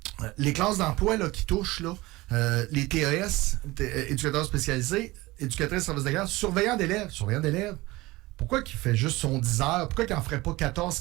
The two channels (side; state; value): left; quieter; 20.3 dB